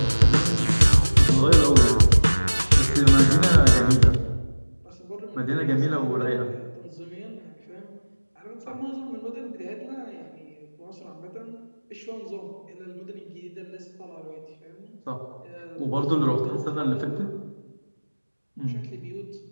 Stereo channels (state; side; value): inverted; both; correlation -1.00